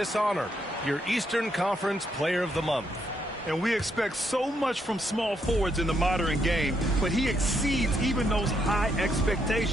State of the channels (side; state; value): both; normal; correlation 0.76